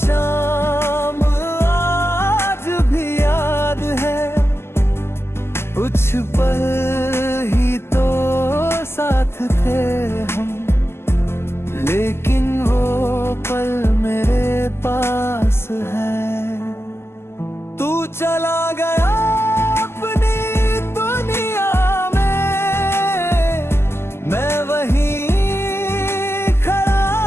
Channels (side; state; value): right; late; 0.12 ms